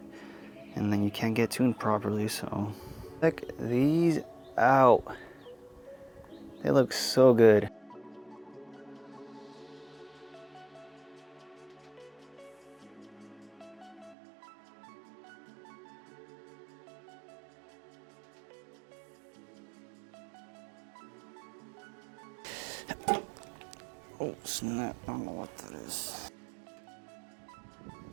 and then you can't get tuned properly. So, check these out. They look so good. Oh snap, I don't know what that is.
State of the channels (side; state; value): left; drops out; at 14.2 s